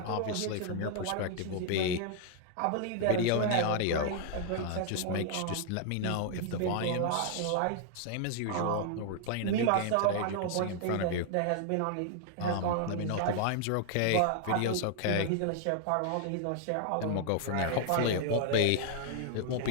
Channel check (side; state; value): both; different; correlation 0.00